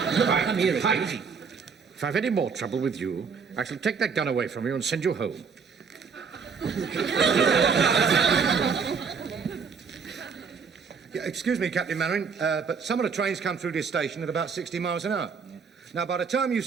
here, Pike. easy. If I've any more trouble with you, I shall take that gun away from you and send you home. Yeah, excuse me, Captain Mainwaring, but some of the trains come through this station at about 60 miles an hour. Now, by the time you've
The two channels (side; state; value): left; quieter; 5.7 dB